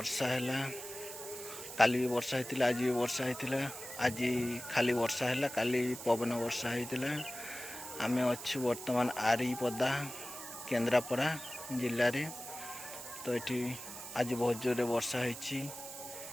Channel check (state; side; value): noise; right; hiss, 11 dB below the sound